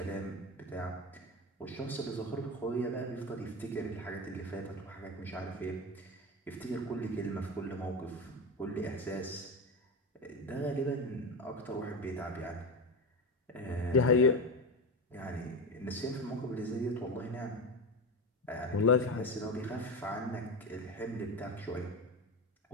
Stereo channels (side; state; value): both; normal; correlation 0.20